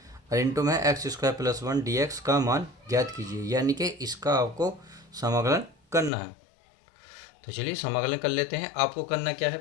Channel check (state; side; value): drops out; right; at 6.1 s